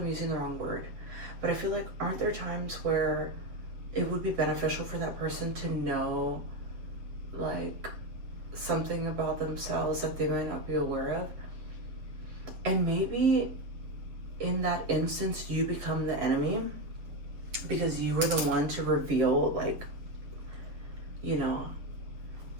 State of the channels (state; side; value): late; left; 7.8 ms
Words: using the wrong word, but I feel like, aren't there times where it would be beneficial for that person to know like something about themselves that they might not be aware of? And maybe in that instance you become the enemy because you were the one to reveal, like, you know,